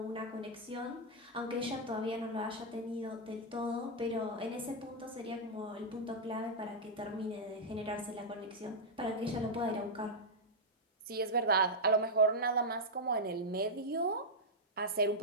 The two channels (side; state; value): both; normal; correlation -0.05